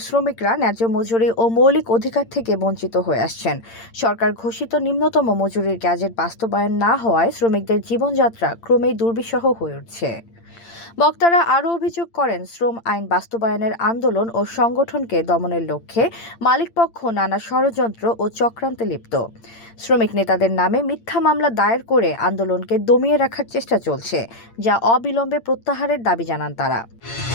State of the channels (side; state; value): right; late; 8.8 ms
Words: শ্রমিকরা ন্যায্য মজুরি ও মৌলিক অধিকার থেকে বঞ্চিত হয়ে আসছেন। সরকার ঘোষিত নিম্নতম মজুরির গ্যাজেট বাস্তবায়ন না হওয়ায় শ্রমিকদের জীবনযাত্রা ক্রমেই দুর্বিষহ হয়ে উঠছে। বক্তারা আরও অভিযোগ করেন, শ্রম আইন বাস্তবায়নের আন্দোলন ও সংগঠনকে দমনের লক্ষ্যে মালিকপক্ষ নানা ষড়যন্ত্র ও চক্রান্তে লিপ্ত। শ্রমিক নেতাদের নামে মিথ্যা মামলা দায়ের করে আন্দোলনকে দমিয়ে রাখার চেষ্টা চলছে, যা অবিলম্বে প্রত্যাহারের দাবি জানান তারা।